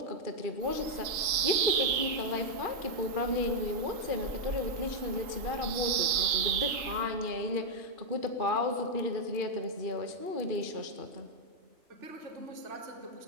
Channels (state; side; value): late; left; 3.7 ms